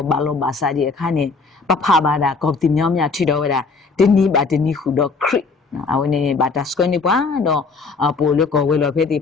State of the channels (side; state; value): right; quieter; 4.4 dB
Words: ဘာလို့ဘာစာဒီအခါနေပဖဘာဒါကောတိမြောင်းမြထီတော့ဝဲတာဒီနီဘာဒီနီခုတော့ခရစ်အဝနေဘာတာစကွနေပွားတော့ပိုလကောဝဲလောဖဲတိ